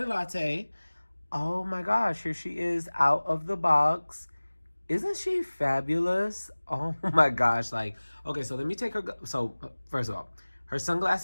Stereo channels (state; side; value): inverted; both; correlation -1.00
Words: latte. Oh my gosh, here she is out of the box. Isn't she fabulous? Oh my gosh. Like, okay, so let me take her. So first of all, her